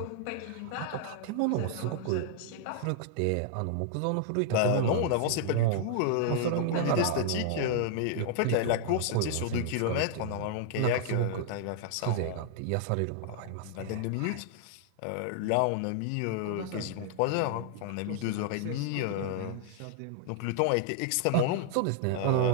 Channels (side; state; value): both; different; correlation -0.01